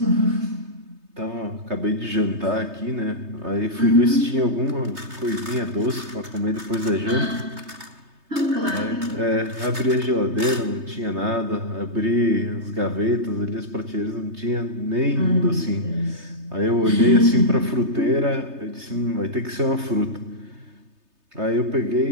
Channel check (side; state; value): left; late; 3.3 ms